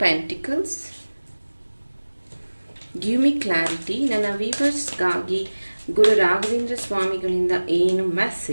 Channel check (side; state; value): both; inverted; correlation -1.00